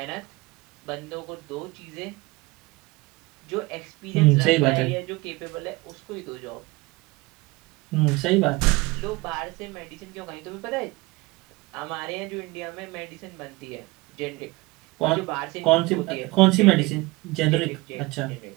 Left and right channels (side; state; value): left; quieter; 22.9 dB